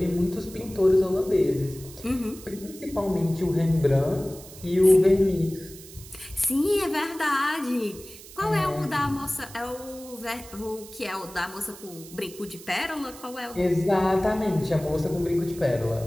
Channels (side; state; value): right; noise; hiss, 17 dB below the sound